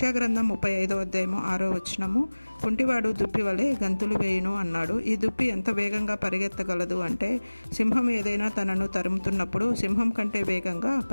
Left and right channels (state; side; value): inverted; both; correlation -1.00